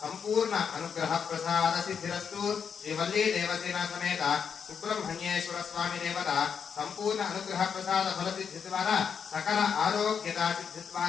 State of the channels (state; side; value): quieter; right; 6.9 dB